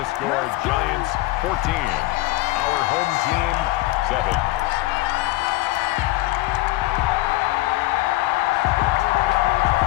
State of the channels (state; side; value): quieter; right; 18.9 dB